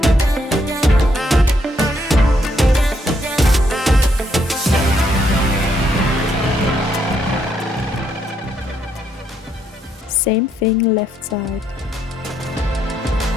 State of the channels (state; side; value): normal; both; correlation 0.74